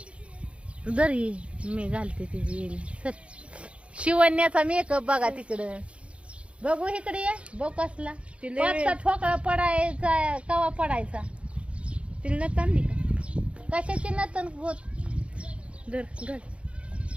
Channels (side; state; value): left; late; 0.060 ms